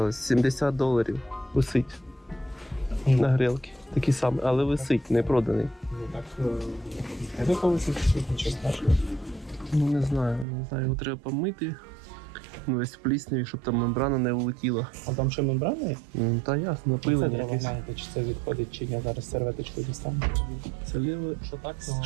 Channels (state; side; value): drops out; left; at 10.5 s